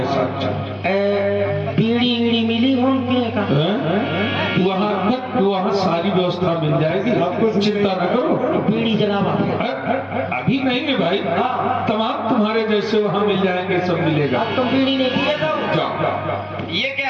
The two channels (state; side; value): identical; both; correlation 1.00